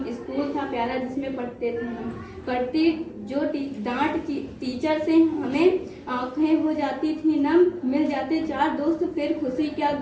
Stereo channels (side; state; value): both; identical; correlation 1.00